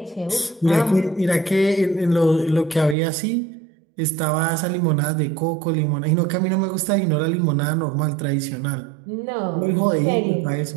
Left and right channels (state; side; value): drops out; left; at 3.0 s